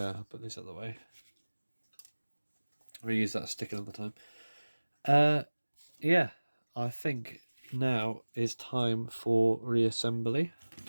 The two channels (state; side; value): inverted; both; correlation -1.00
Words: I'll put this out of the way. I'll reuse that stick another time. Yeah, I think now is time for reassembly.